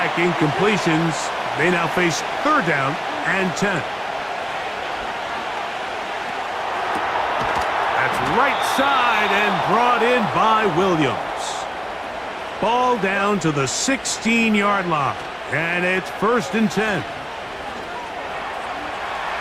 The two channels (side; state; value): both; identical; correlation 1.00